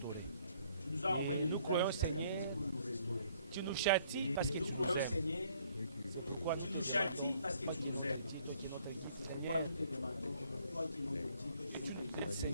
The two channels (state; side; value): inverted; both; correlation -0.63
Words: croyons, Seigneur. Tu nous châties parce que tu nous aimes. Pourquoi tu nous châties parce que tu nous aimes. Seigneur, tu nous aides,